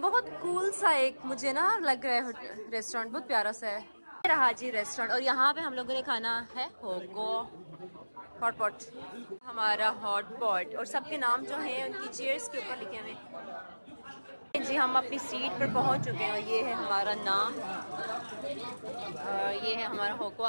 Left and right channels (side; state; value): both; inverted; correlation -1.00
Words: कूल सा एक मुझे ना लग रहा है रेस्टोरेंट, बहुत प्यारा सा है। रहा जी रेस्टोरेंट, और यहाँ पे हम लोगों ने खाना है होगो हॉट पॉट, हमारा हॉट पॉट, और सबके नाम जो हैं उनकी चेयर्स के ऊपर लिखे हुए जी। हम अपनी सीट पर पहुंच चुके हैं और ये है हमारा नाम, ये है हमारा होगो।